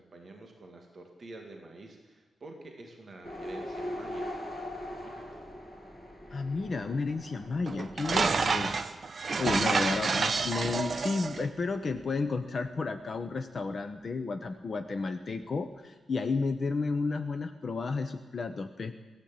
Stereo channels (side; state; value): both; normal; correlation 0.86